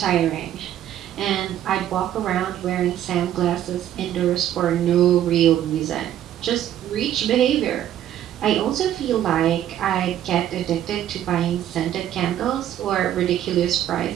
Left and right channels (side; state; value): left; quieter; 11.4 dB